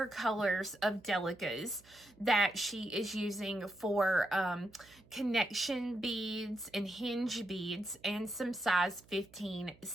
colors of Delicas that she is using for connection beads and hinge beads and some size 15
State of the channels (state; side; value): noise; right; hum, 26 dB below the sound